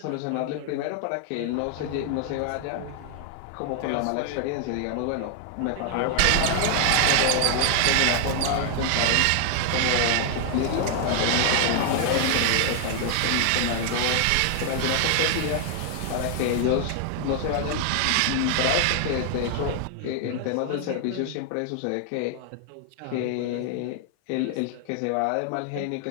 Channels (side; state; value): both; different; correlation 0.00